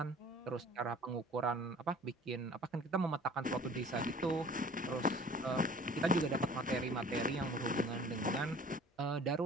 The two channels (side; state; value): both; normal; correlation 0.48